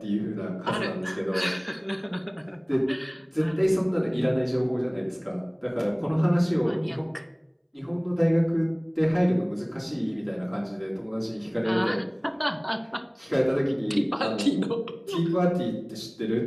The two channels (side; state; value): both; identical; correlation 1.00